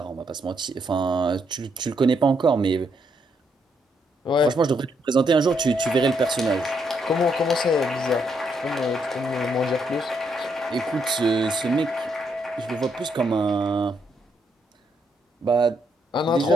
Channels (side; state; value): both; normal; correlation 0.75